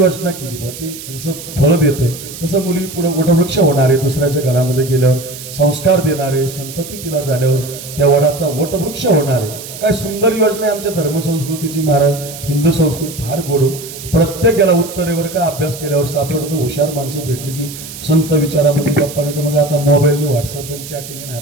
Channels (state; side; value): noise; right; hiss, 12 dB below the sound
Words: केली बा. ते जसं फळ देतं तसं मुली पुढे वटवृक्ष होणारे, दुसऱ्याच्या घरामध्ये गेल्यावर संस्कार देणारे, संतती तिला झाल्यावर त्या वडाचा वटवृक्ष होणारे. काय सुंदर योजना आहे आमच्या धर्मसंस्कृतीची महाराज. हिंदू संस्कृती फार गोड. प्रत्येकाला उत्तरेवर का अभ्यास केल्यावर सापडतं. हुशार माणसं भेटली की संत विचारामध्ये गप्पा नाही. तर मग आता मोबाईलने व्हॉट्सअप आणि चॅटिंग